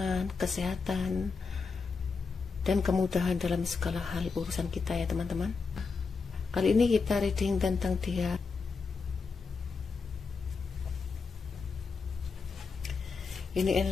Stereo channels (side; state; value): right; quieter; 4.8 dB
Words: kesehatan, dan kemudahan dalam segala hal urusan kita ya teman-teman. Kali ini kita reading tentang dia. Ini